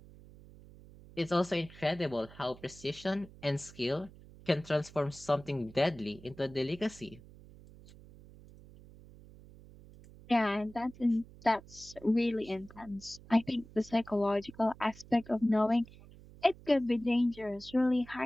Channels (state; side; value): noise; right; hum, 20 dB below the sound